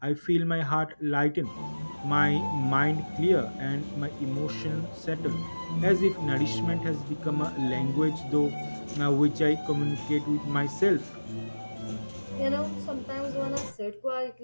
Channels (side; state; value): both; inverted; correlation -1.00